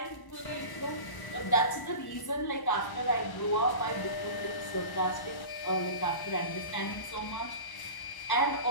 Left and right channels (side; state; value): right; late; 1.0 ms